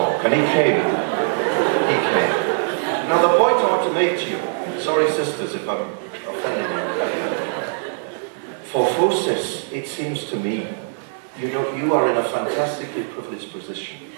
And he came. He came. Now, the point relate to you. Sorry, sisters, if I'm offending you. For FOSIS, it seems to me, you are in a fantastically privileged position.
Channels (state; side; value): silent; left; digital silence